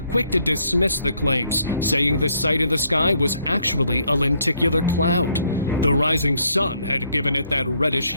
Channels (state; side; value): inverted; both; correlation -0.70